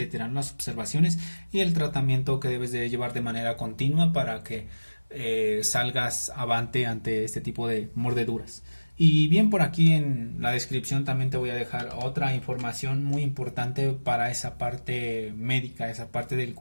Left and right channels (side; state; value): both; inverted; correlation -1.00